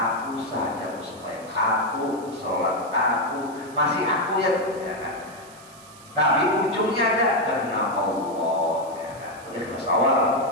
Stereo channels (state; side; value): noise; right; hiss, 22 dB below the sound